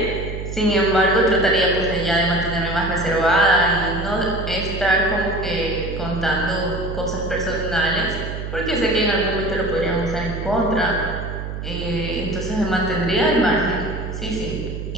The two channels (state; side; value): noise; right; hum, 6 dB below the sound